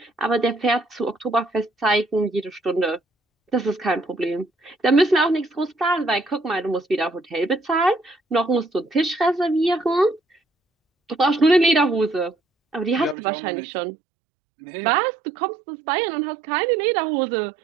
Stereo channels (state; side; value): drops out; left; at 13.2 s